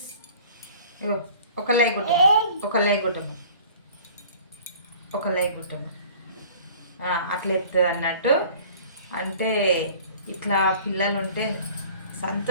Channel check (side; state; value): both; inverted; correlation -0.48